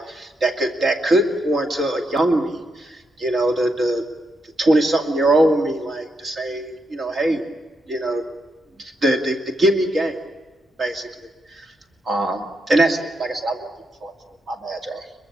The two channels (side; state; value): both; normal; correlation 0.81